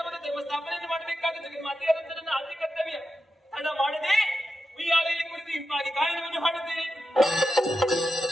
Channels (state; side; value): normal; both; correlation 0.89